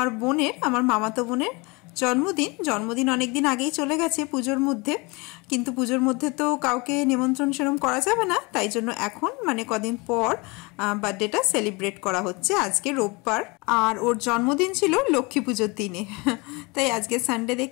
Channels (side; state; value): right; quieter; 27.0 dB